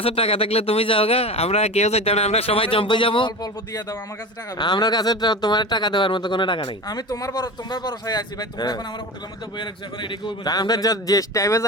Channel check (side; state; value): both; normal; correlation 0.29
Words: টাকা থাকলে তুমি যাও গা আমরা কেউ যাইতাম না আমরা সবাই জম্পে যাবো অল্প অল্প দিয়ে দাও আমার কাছে টাকা আমার কাছে তোমার টাকা দেওয়ার মতো কোনো টাকা নাই আমি তোমার ভরসায় আছি ভাই তোমরা এখন আমার হোটেলের মধ্যে বইয়ে রাখছো এখন এদিকে হইব না আমরা যে টাইমে